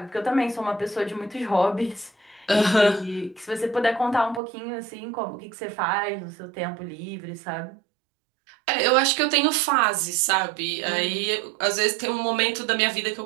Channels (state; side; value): drops out; left; at 4.4 s